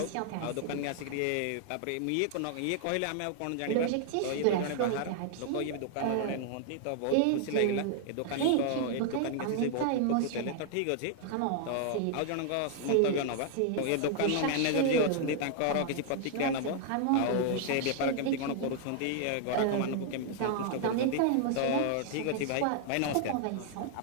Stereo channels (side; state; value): both; different; correlation 0.00